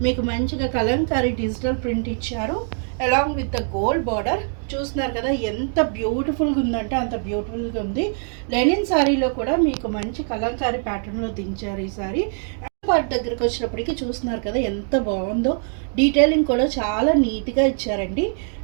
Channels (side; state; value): left; silent; 58 dB below the other